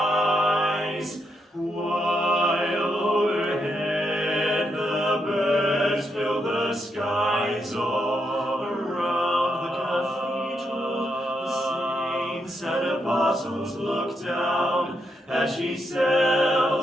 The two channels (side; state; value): both; normal; correlation 0.80